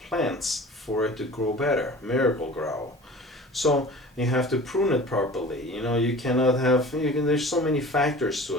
for it to grow better, miracle grow. So you have to prune it properly. You know, you cannot have, there's so many factors to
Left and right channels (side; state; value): both; normal; correlation 0.41